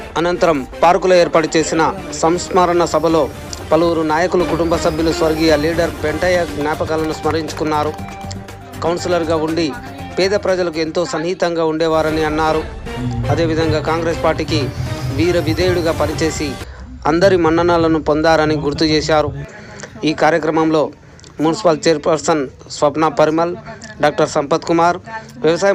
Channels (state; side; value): identical; both; correlation 1.00